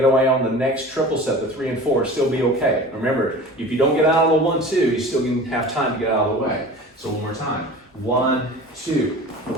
away on the next triple step, the 3 and 4, still be okay. Remember, if you don't get out of the 1, 2, you still can have time to get out of the way. So one more time. 1, 2,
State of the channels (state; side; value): normal; both; correlation 0.38